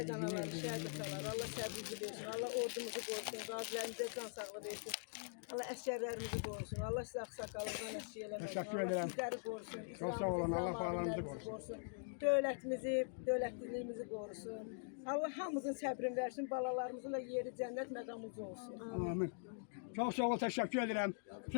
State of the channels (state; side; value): silent; right; digital silence